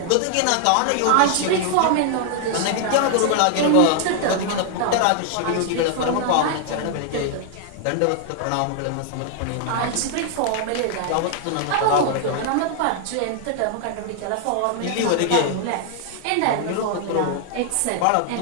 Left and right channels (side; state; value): both; different; correlation 0.00